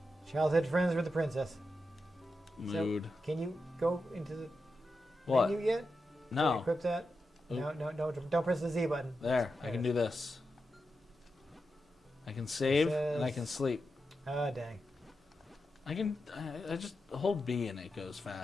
childhood friends with the princess. Mood. So, can you go into the What? menu yet? Can you No. equip that? Oop. No, don't press the Z button. There, I can do this. I can save and I says- can sleep. Oh, dang. I just hold B and it goes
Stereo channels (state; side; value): normal; both; correlation 0.89